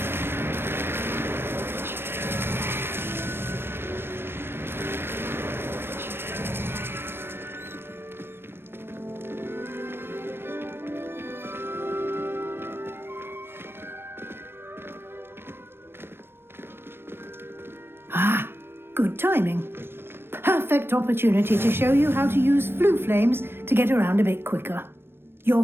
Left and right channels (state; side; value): late; left; 0.11 ms